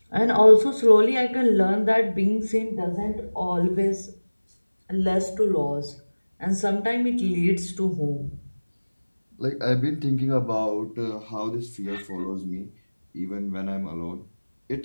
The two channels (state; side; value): inverted; both; correlation -1.00